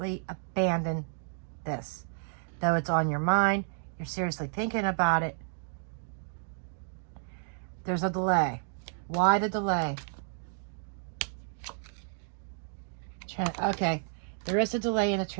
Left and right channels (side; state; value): left; silent; digital silence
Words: abandon this. Though it's on your mind, you're seriously thinking about it. There's a delay. Why the delay? Okay. There is a delay in the